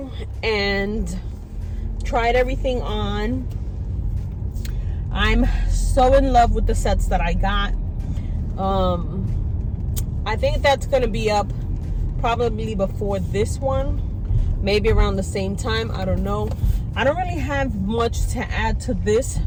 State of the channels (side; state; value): both; identical; correlation 1.00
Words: and tried everything on. I'm so in love with the sets that I got. I think that's going to be up probably before this one, maybe around the same time. I don't know. I don't really have much to add to this.